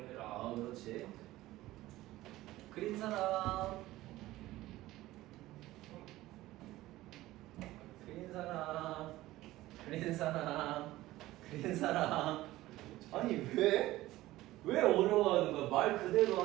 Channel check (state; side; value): quieter; left; 16.7 dB